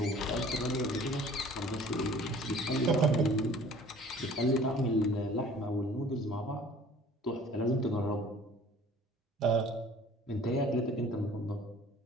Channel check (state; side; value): normal; both; correlation 0.49